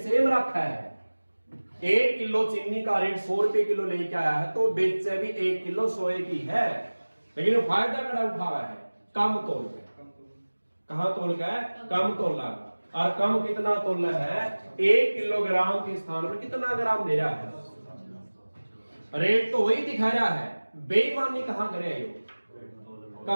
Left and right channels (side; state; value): both; inverted; correlation -1.00